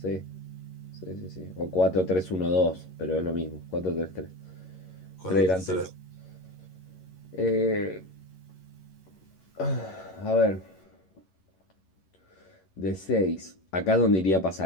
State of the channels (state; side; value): late; right; 11 ms